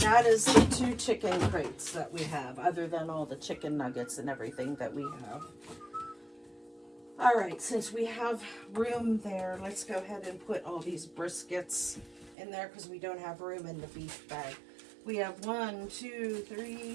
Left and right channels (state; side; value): drops out; left; at 12.4 s